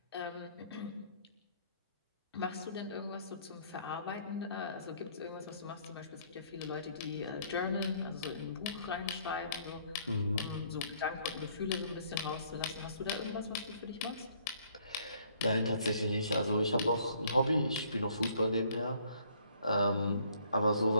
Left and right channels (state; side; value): inverted; both; correlation -0.62